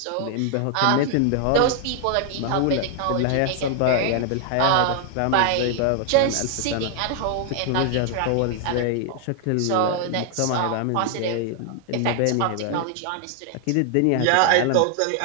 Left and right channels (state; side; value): different; both; correlation 0.00